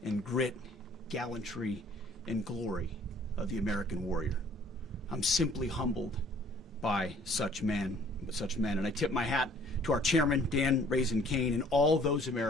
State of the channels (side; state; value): both; normal; correlation 0.56